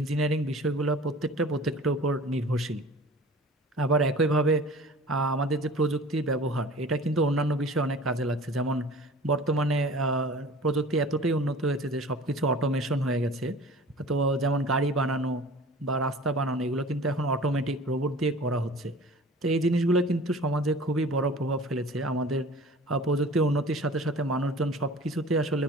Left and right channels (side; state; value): both; normal; correlation 0.43